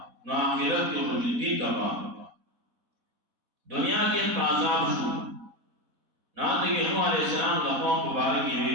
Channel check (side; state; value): left; late; 4.1 ms